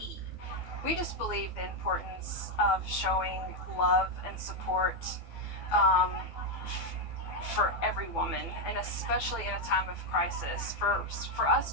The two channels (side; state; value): right; late; 12 ms